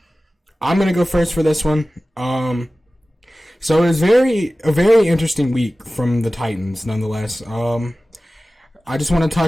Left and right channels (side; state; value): both; normal; correlation 0.96